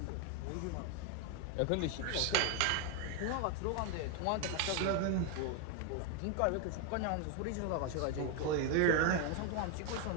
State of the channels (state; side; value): different; both; correlation 0.01